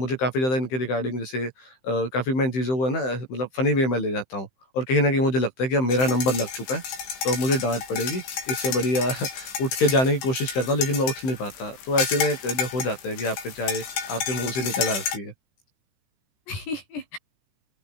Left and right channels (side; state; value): right; late; 16 ms